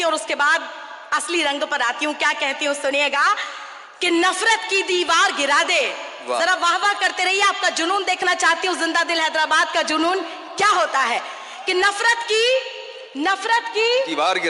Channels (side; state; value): both; identical; correlation 1.00